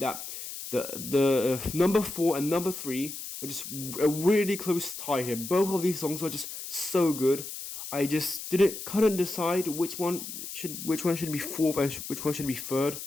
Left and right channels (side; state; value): left; noise; hiss, 9 dB below the sound